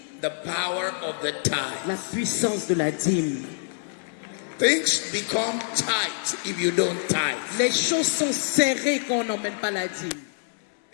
the power of the tithe. La puissance de la dîme. Things become tight if you don't tithe. Les choses sont serrées quand on n'emmène pas la dîme.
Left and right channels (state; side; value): silent; right; 61 dB below the other